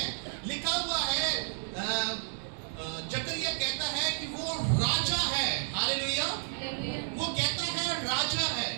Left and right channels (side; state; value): left; silent; 57 dB below the other